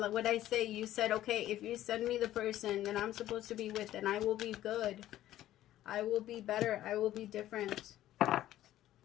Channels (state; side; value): quieter; right; 13.5 dB